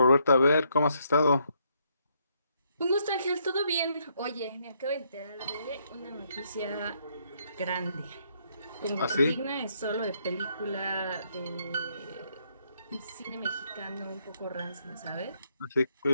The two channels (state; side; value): inverted; both; correlation -0.73